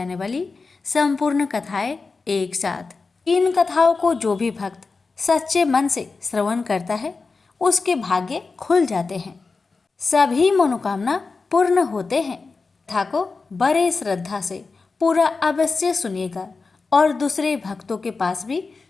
वाली संपूर्ण कथाएं एक साथ। इन कथाओं को जो भी भक्त सच्चे मन से श्रवण करता है उसके भाग्य खुल जाते हैं, सभी मनोकामना पूर्ण होते हैं। कथा को बड़े श्रद्धा से पूरा अवश्य सुनिएगा और दूसरे भक्तों के पास भी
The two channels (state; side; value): quieter; right; 4.2 dB